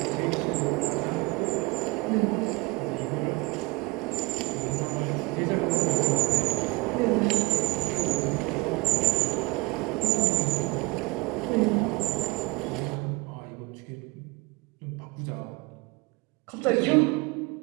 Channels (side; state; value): left; quieter; 24.4 dB